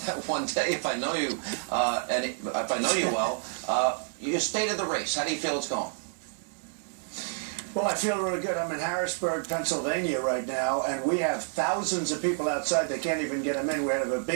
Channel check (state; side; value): silent; left; digital silence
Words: that one day if I know you, and if I know you well. You stayed in the race. How do you feel it's going? Well, I feel really good. I'm in Harrisburg, Pennsylvania right now, and we have thousands of people outside. They can't even get them in. We have a